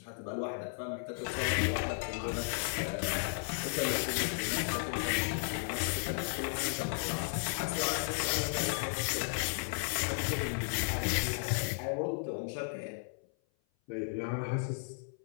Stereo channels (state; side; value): silent; right; 55 dB below the other